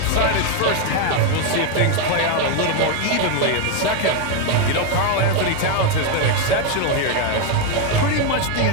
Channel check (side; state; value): both; different; correlation 0.02